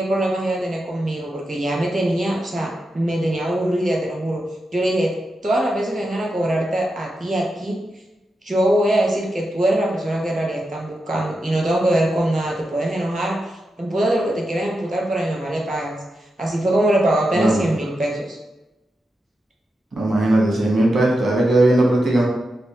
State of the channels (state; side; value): normal; both; correlation 0.88